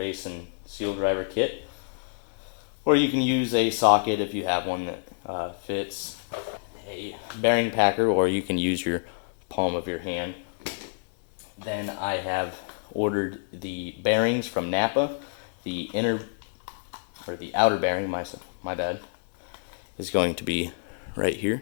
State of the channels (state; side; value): silent; right; 60 dB below the other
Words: and seal driver kit. Or you can use a socket if you have one that fits, a bearing packer, or you can use your palm of your hand. Then I have ordered the bearings from Napa. The outer bearing, my bad, is going to be right here.